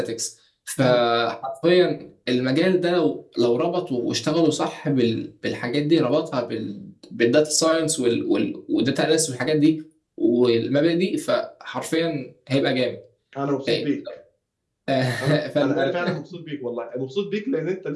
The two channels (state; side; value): identical; both; correlation 1.00